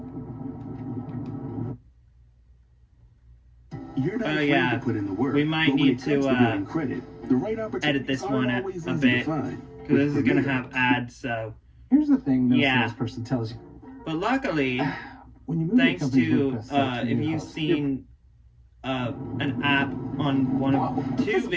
You're not afraid to put in the work. We might need to credit, the right edit this one a bit, because this is going to have ads, so... Here's the thing no salesperson tells you. But luckily, When you move thanks your company's to WordPress site to if your you've host, seen an app on one of two This one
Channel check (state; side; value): identical; both; correlation 1.00